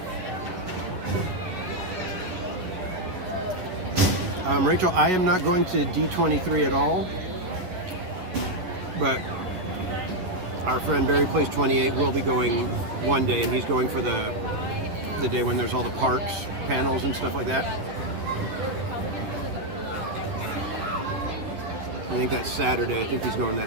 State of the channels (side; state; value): left; late; 11 ms